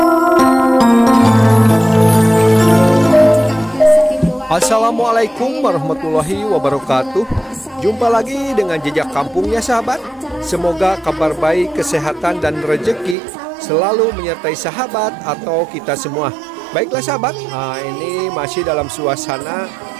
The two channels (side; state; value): left; drops out; at 13.2 s